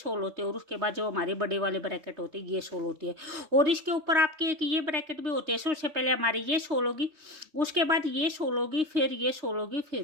होती है। और उसके बाद जो हमारी बड़ी वाली ब्रैकेट होती है ये 16 होती है। और इसके ऊपर आपकी एक ये ब्रैकेट भी होती है। सबसे पहले हमारी ये 16 होगी, उसके बाद ये 16 होगी, फिर ये 16 होगी,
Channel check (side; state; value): left; late; 3.2 ms